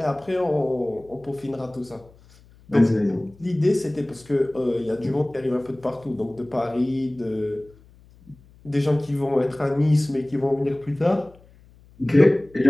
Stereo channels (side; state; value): left; noise; hum, 26 dB below the sound